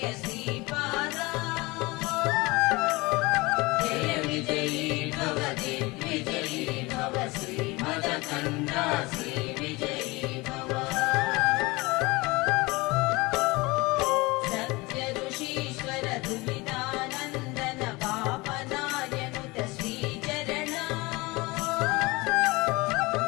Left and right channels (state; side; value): quieter; right; 23.3 dB